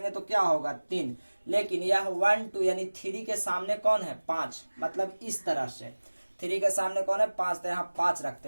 तो क्या होगा 3, लेकिन यह 1 2 यानी 3 के सामने कौन है 5, मतलब इस तरह से 3 के सामने कौन है 5, तो यहाँ 5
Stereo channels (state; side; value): inverted; both; correlation -1.00